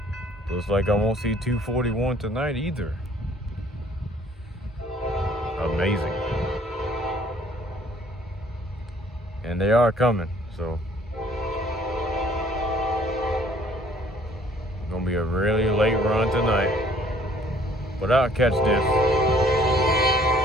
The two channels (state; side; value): normal; both; correlation 0.59